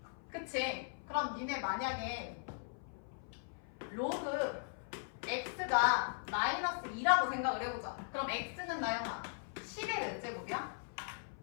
그치? 그럼 니네 만약에 로그 x가 마이너스 2라고 생각을 해보자. 그럼 x는 나영아 10의 몇 제곱이야?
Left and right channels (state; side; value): silent; right; 52 dB below the other